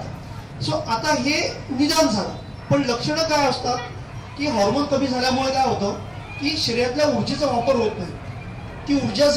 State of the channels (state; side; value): identical; both; correlation 1.00